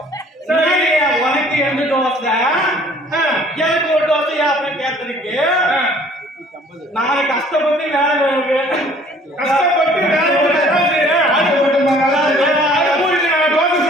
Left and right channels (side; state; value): both; normal; correlation 0.55